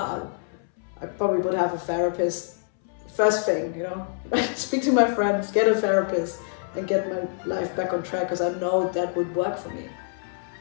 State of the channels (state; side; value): silent; right; 61 dB below the other